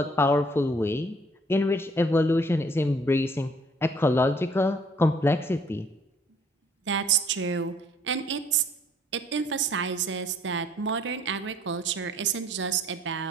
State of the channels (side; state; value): both; normal; correlation 0.59